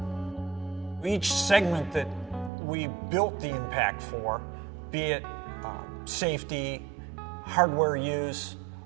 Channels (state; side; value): drops out; left; at 2.5 s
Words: Each segment that we built the M-Pact for, be it safety, hardware use,